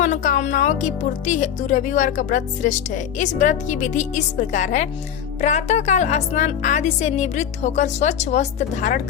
की पूर्ति हेतु रविवार का व्रत श्रेष्ठ है। इस व्रत की विधि इस प्रकार है। प्रातः काल स्नान आदि से निवृत्त होकर स्वच्छ वस्त्र धारण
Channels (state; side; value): quieter; right; 9.2 dB